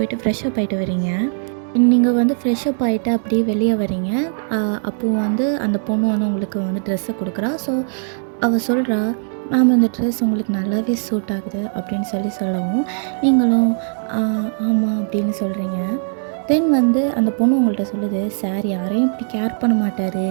ஃப்ரெஷ்அப் ஆகிட்டு வரீங்க. நீங்கள் வந்து ஃப்ரெஷ்அப் ஆகிட்டு அப்படியே வெளியே வரீங்க. அப்போது வந்து அந்த பொண்ணு வந்து உங்களுக்கு வந்து ட்ரெஸ்ஸை கொடுக்குறா. ஸோ அவள் சொல்கிறா, மேம் இந்த ட்ரெஸ் உங்களுக்கு நல்லாவே சூட் ஆகுது அப்படின்னு சொல்லவும் நீங்களும் ஆமாம் அப்படின்னு சொல்கிறீங்க. தென் வந்து அந்த பொண்ணு உங்கள்கிட்ட சொல்லுது, சார் யாரையும் இப்படி கேர் பண்ண மாட்டார்,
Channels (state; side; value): silent; left; 66 dB below the other